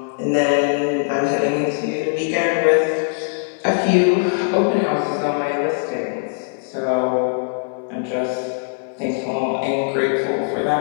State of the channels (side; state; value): right; silent; digital silence